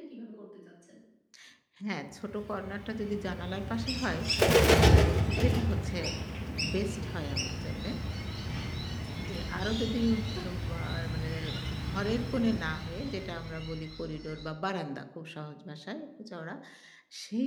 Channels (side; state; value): both; identical; correlation 1.00